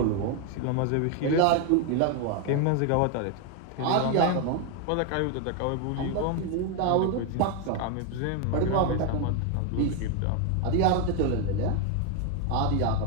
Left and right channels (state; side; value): different; both; correlation 0.01